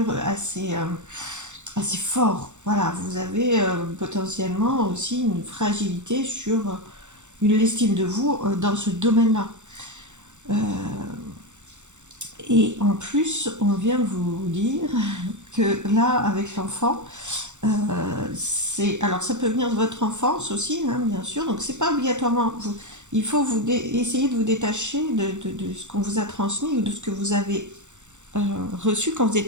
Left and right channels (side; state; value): left; late; 0.84 ms